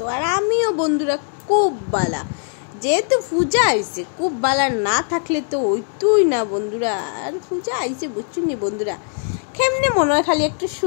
আর আমিও বন্ধুরা খুব ভালো। যেহেতু পূজা আইছে, খুব ভালো না থাকলে তো হইতোই না বন্ধুরা। আর পূজা আইছে বুঝছুনি বন্ধুরা, কেমনে মনে হয় খালি একটু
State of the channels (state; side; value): silent; right; 64 dB below the other